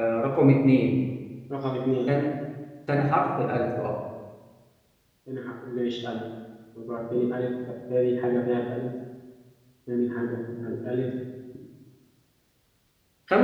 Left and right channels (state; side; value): identical; both; correlation 1.00